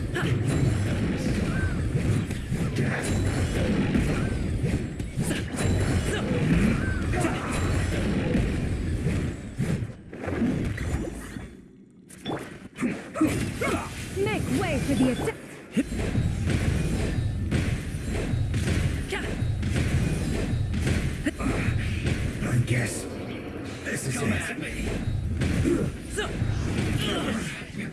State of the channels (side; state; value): both; identical; correlation 1.00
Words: Make way for the attack! I guess this is it. At me. You